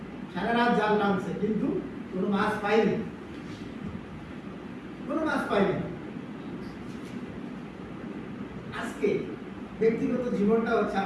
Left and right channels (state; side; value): identical; both; correlation 1.00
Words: সারা রাত জাল টানছে, কিন্তু কোনো মাছ পায়নি, কোনো মাছ পায়নি। আজকে ব্যক্তিগত জীবনটা হচ্ছে